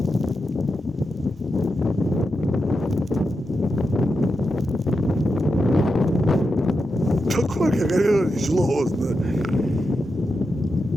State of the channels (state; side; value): normal; both; correlation 0.88